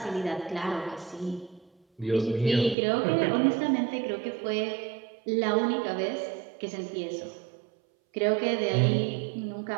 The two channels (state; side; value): drops out; left; at 2.8 s